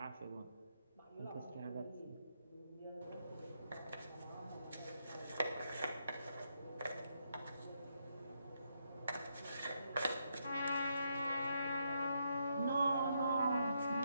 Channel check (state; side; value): inverted; both; correlation -0.78